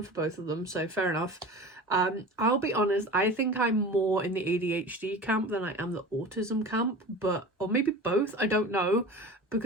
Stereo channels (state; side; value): normal; both; correlation 0.35